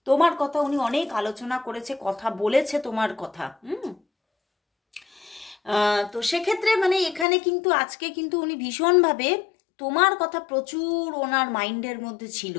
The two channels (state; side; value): drops out; right; at 7.2 s